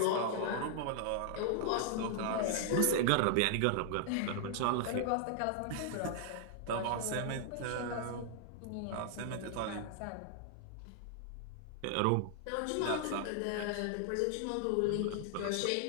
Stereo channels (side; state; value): both; different; correlation 0.00